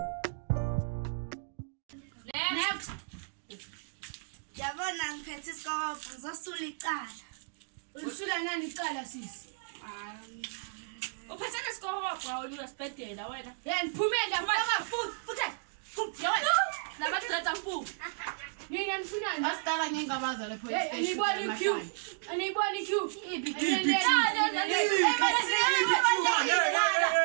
Yabona ngiphethe isikobho ngizosula icala. Ulisula nani icala sisi? Uphethe nesikobho wena uyasibhedela wena. Yena phumela mfaka futhi. Yawena. Nabathi letha mpu. Mina nifunani? Asitala ngingabaza le police Hey, station. aniboni Q.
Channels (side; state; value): left; silent; digital silence